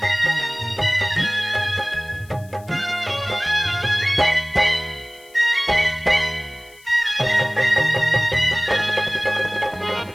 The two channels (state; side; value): noise; left; hiss, 26 dB below the sound